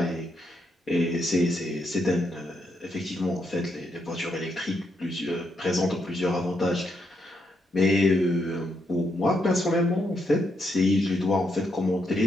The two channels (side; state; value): both; normal; correlation 0.79